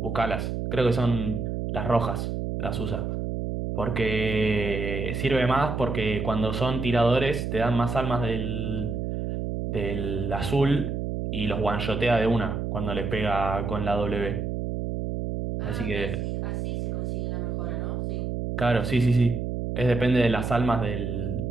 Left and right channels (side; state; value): right; noise; hum, 3 dB below the sound